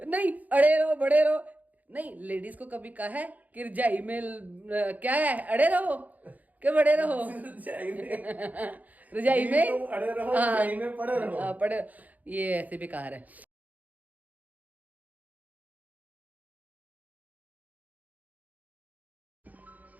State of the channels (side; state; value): left; late; 0.079 ms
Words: नहीं, अड़े रहो बड़े रहो नहीं। लेडीज को कभी कहा है कि रजाई में क्या है, अड़े रहो के बड़े रहो? रजाई में तुम अड़े रहो, रजाई में पड़े रहो। पड़े, ये ऐसे बेकार है।